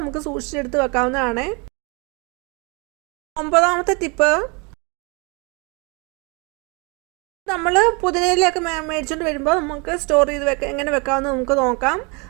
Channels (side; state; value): left; quieter; 31.0 dB